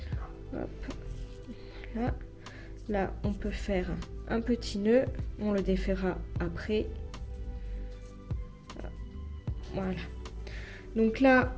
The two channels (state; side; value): identical; both; correlation 1.00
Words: Hop. Là. Là, on peut faire un petit nœud, on le défera après. Voilà. Donc là,